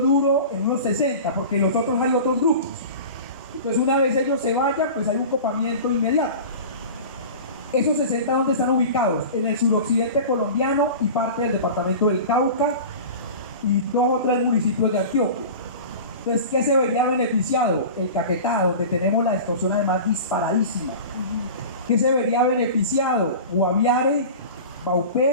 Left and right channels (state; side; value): inverted; both; correlation -0.35